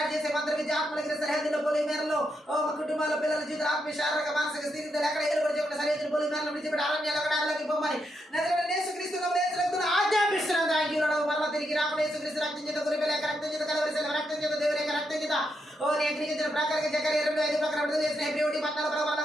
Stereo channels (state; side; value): normal; both; correlation 0.81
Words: చేసే మంత్రబీజ ఆత్మల క్రియ సరిహద్దులో పోలి మేరలో ఓ కుటుంబాల పిల్లల జీవితాల ఆత్మీయ శారీరక మానసిక స్థితిలో ఎక్కడ ఏలుబడి చెప్పిన సరిహద్దులు పోలి మేరలో విడిచిపెట్టి అరణ్యాలు అక్కడ అడవిలోకి పొమ్మని నజరేయుడైన యేసుక్రీస్తును ఆజ్ఞాపిస్తున్నాం. Thank you lord. మరలా తిరిగి రాకుండా యేసుక్రీస్తు రక్తం చేత గురిపేల రక్తం చేత కలవరిసిన రక్తం చేత దేవుని యొక్క రక్తం చేత ఓ నేర్పించిన ప్రకారంగా జకర్యా 2:5 ప్రకారం విడుదల చేసిన హెబ్రీ 14